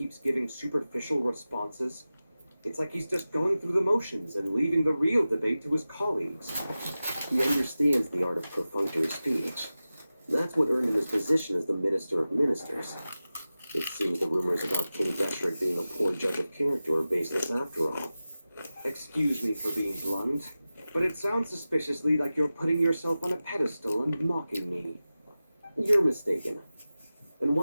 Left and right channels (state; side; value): inverted; both; correlation -0.95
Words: giving superficial responses? It's like he's just going through the motions and leaving the real debate to his colleagues. He understands the art of perfunctory speech. That's what earned him his position as the Minister of Ministers. It seems the rumors about King Deshret being a poor judge of character are baseless after all. Excuse me for being blunt, but it sounds suspiciously like you're putting yourself on a pedestal and mocking me. You're mistaken. And